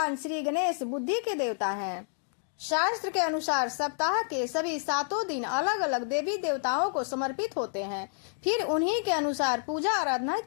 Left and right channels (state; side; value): silent; right; digital silence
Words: श्री गणेश बुद्धि के देवता हैं। शास्त्र के अनुसार सप्ताह के सभी 7 दिन अलग अलग देवी देवताओं को समर्पित होते हैं, फिर उन्हीं के अनुसार पूजा आराधना